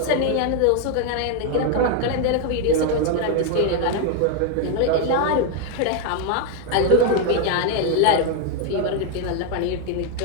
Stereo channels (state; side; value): different; both; correlation 0.01